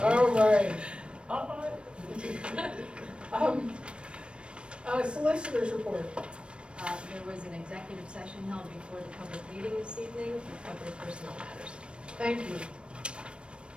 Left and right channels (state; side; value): late; left; 0.057 ms